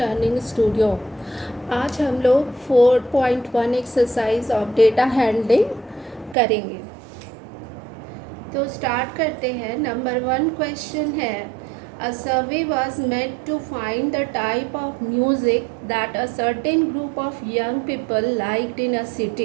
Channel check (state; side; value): drops out; left; at 6.4 s